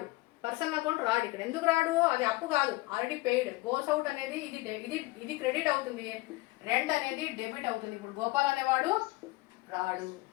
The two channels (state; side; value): quieter; right; 21.1 dB